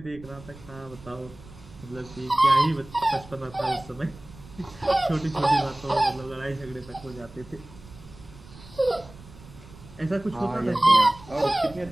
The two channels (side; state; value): right; noise; rumble, 19 dB below the sound